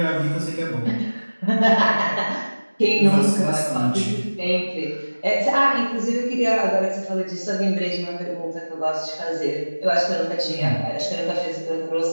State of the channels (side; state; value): both; inverted; correlation -1.00